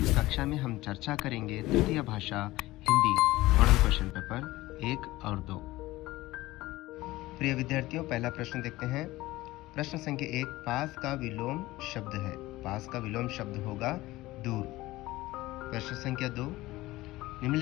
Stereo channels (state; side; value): quieter; right; 18.2 dB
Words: कक्षा में हम चर्चा करेंगे तृतीय भाषा हिंदी मॉडल क्वेश्चन पेपर 1 और 2। प्रिय विद्यार्थियों, पहला प्रश्न देखते हैं। प्रश्न संख्या 1, पास का विलोम शब्द है। पास का विलोम शब्द होगा दूर। प्रश्न संख्या 2,